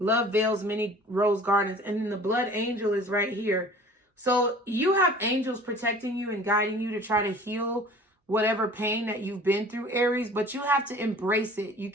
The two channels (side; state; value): both; normal; correlation 0.46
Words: veils many rose gardens. And then the Blood Angel is right here. So you have angels protecting you and guiding you to try to heal whatever pain that you've been through, Aries. But you have to embrace it. You